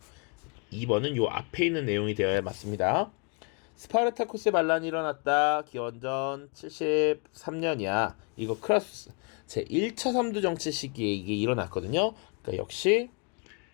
2번은 요 앞에 있는 내용이 되어야 맞습니다. 스파르타쿠스의 반란이 일어났다. 기원전 73년이야. 이거 크라수스 제1차 삼두 정치 시기에 이게 일어났거든요. 그러니까 역시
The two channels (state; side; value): quieter; right; 35.1 dB